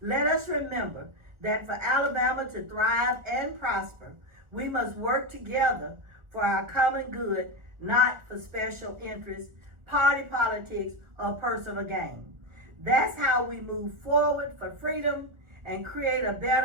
let us remember that for Alabama to thrive and prosper, we must work together for our common good, not for special interests, party politics, or personal gain. That's how we move forward for freedom and create a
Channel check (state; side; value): late; left; 1.4 ms